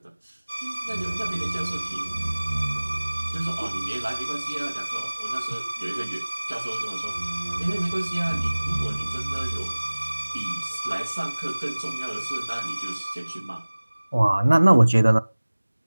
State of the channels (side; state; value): both; inverted; correlation -1.00